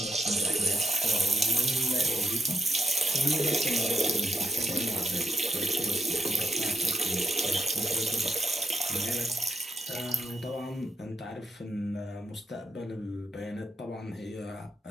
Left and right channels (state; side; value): normal; both; correlation 0.77